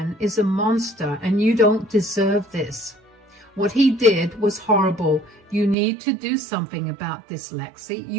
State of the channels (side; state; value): left; drops out; at 5.8 s